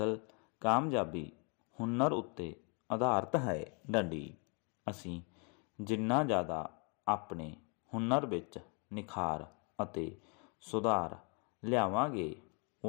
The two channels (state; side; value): quieter; right; 35.4 dB